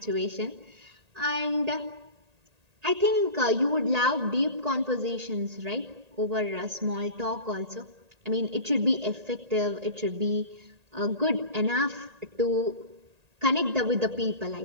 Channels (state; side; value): late; left; 1.8 ms